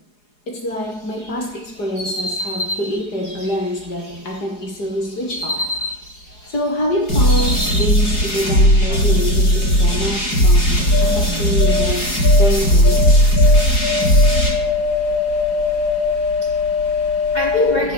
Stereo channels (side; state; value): right; late; 4.8 ms